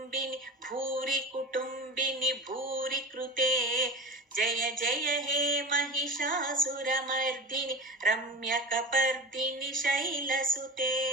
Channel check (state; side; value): normal; both; correlation 0.30